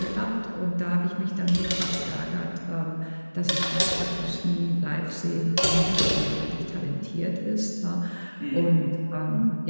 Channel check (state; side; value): inverted; both; correlation -1.00